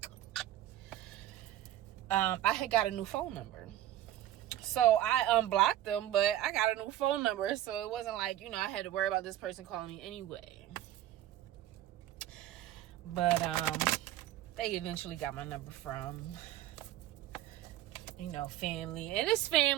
I had got a new phone number. So I unblocked them, but I got a new phone number. So it wasn't like, I had to worry about this person calling me anyway. But they eventually got my number from, family. And this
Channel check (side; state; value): left; quieter; 13.1 dB